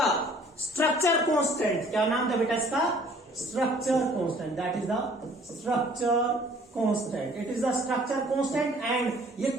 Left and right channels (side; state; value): both; normal; correlation 0.55